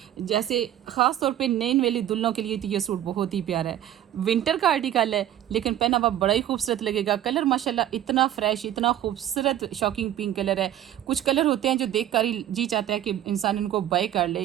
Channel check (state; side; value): quieter; left; 11.9 dB